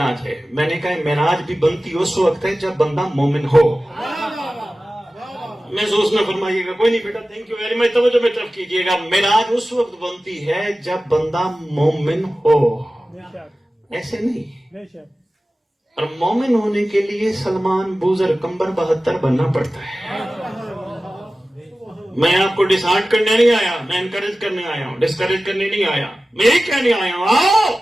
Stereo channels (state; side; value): normal; both; correlation 0.96